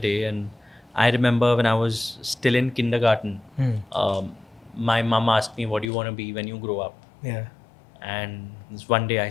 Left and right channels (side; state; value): right; drops out; at 5.9 s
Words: And I remember when I was still in kindergarten, my mom asked me, "What do you want to be when you grow up?" Yeah. And this one day I